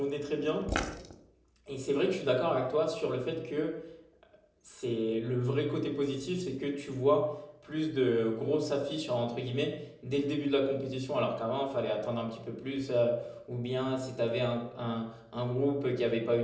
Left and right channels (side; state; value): both; identical; correlation 1.00